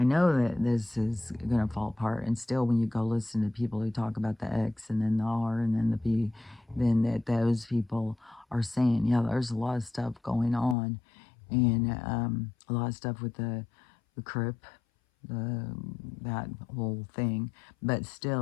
know that this is going to fall apart, and still when you go listen to people who talk about the X and then the R and then the B, then that those people are saying, yeah, there's a lot of stuff going on, and a lot of stuff with the CRIP, that whole thing, but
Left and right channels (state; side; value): drops out; right; at 10.8 s